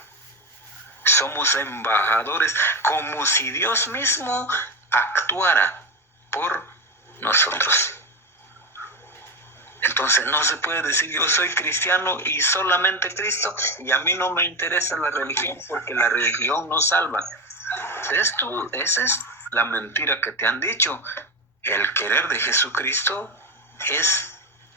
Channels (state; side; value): normal; both; correlation 0.17